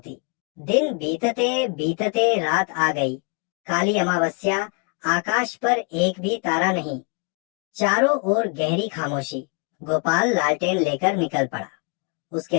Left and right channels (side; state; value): right; quieter; 36.2 dB